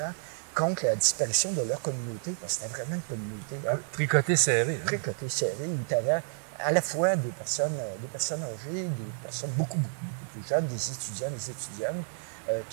contre la disparition de leur communauté, parce que c'était vraiment une communauté. Hein? Tricoté serré. Hein? Tricoté serré, où tu avais à la fois des personnes âgées, des personnes beaucoup plus jeunes, des étudiants, des étudiantes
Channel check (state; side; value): silent; left; digital silence